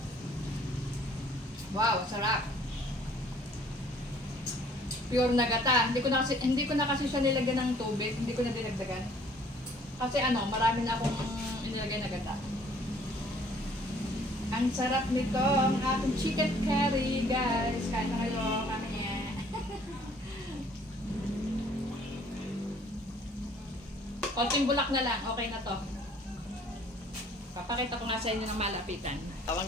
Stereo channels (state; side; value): normal; both; correlation 0.57